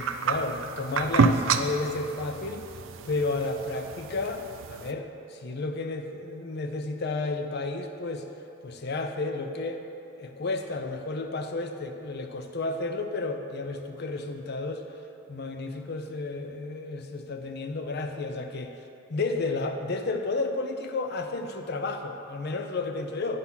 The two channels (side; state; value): both; normal; correlation 0.18